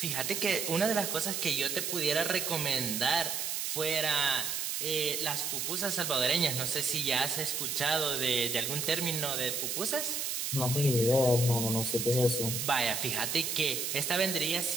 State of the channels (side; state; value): right; noise; hiss, 2 dB below the sound